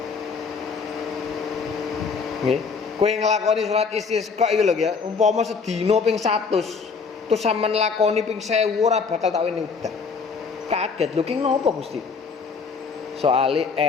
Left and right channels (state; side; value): quieter; right; 5.3 dB